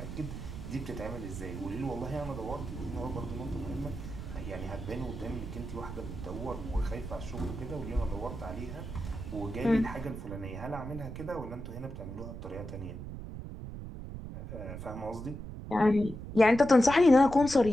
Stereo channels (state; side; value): noise; right; rumble, 9 dB below the sound